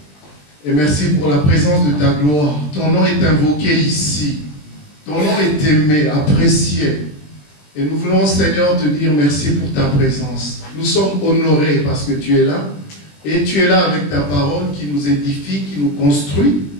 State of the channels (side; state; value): right; late; 20 ms